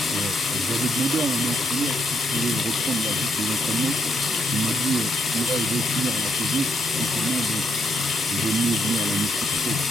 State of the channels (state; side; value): normal; both; correlation 0.75